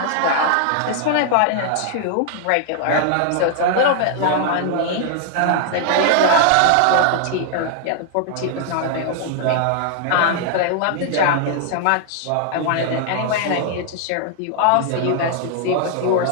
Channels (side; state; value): both; different; correlation 0.00